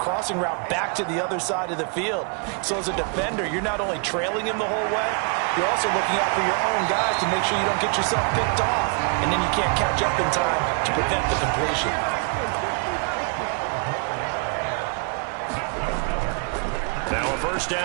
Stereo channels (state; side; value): quieter; left; 38.3 dB